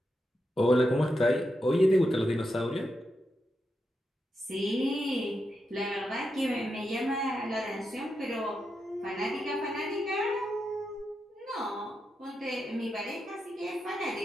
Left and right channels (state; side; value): normal; both; correlation 0.86